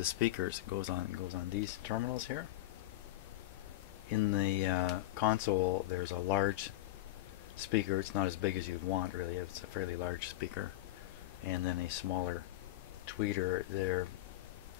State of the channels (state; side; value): quieter; right; 16.0 dB